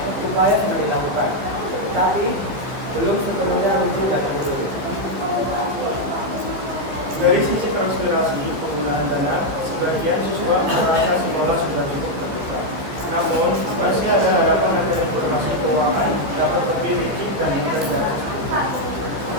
upaya sudah dilakukan, tapi belum sepenuhnya runtuh dan menyeluruh. Dari sisi transpirasi penggunaan dana, sebagian siswa merasa sekolah sudah cukup terbuka. Namun, masih ada harapan agar informasi keuangan dapat lebih licin dan mudah diakses.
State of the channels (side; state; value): left; late; 15 ms